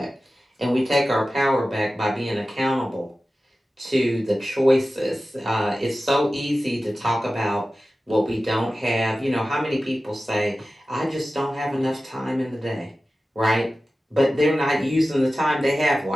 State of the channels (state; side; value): normal; both; correlation 0.95